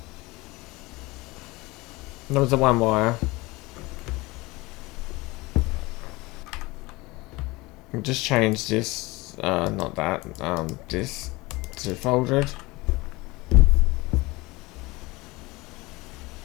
That was the one wire. We just changed this, not that, this to folded.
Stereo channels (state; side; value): quieter; right; 22.5 dB